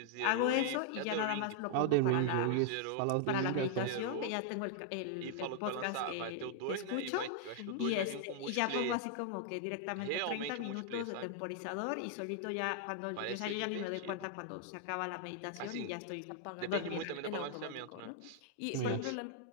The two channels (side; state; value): both; different; correlation 0.00